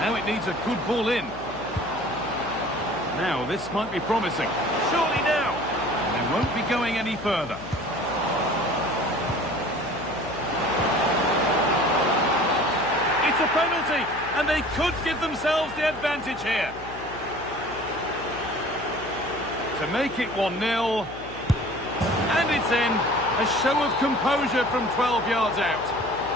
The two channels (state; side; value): noise; left; hum, 16 dB below the sound